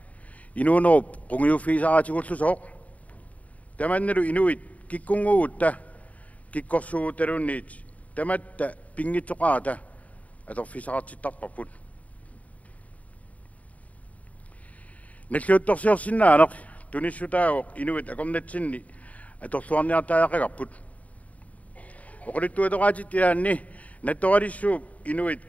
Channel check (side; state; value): right; late; 0.069 ms